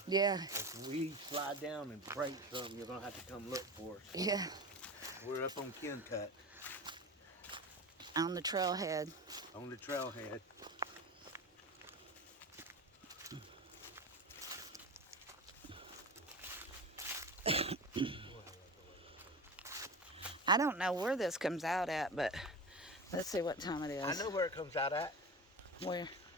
Yeah. if we slide down and break something, you're gonna have to come look for us. Yeah. We're up on Kencut, On the trailhead. on the trailhead. I don't know where this comes out at, but let's see what time it is. I know where it comes out at. Where?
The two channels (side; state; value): both; normal; correlation 0.29